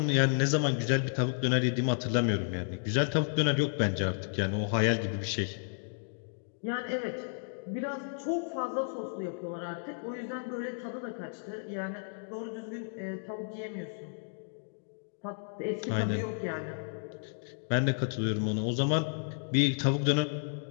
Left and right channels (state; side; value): silent; right; digital silence